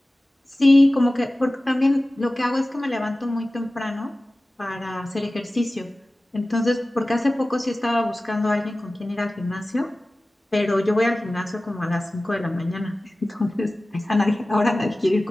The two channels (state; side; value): normal; both; correlation 0.97